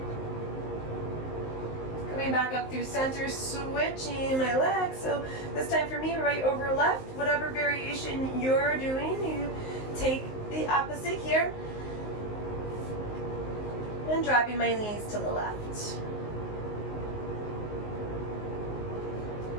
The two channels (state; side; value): late; right; 19 ms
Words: Coming back up through center, switching my legs. So this time for me, right over left, whatever variation you're doing, you take the opposite here. And dropping my knees to the left.